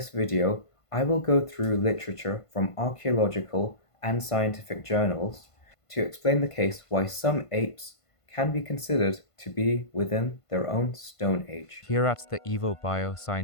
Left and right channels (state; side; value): late; right; 1.5 ms